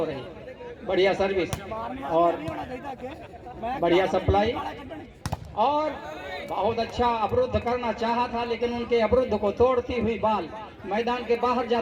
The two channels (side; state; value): both; identical; correlation 1.00